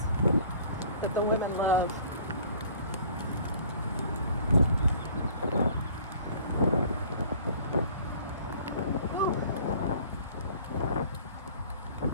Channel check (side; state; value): both; inverted; correlation -0.52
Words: that the women love.